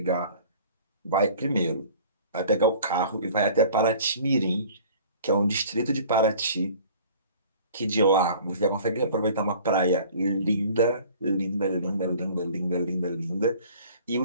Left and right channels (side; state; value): both; inverted; correlation -0.48